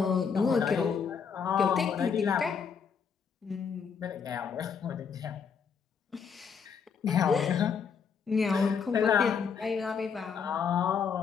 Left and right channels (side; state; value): right; quieter; 6.4 dB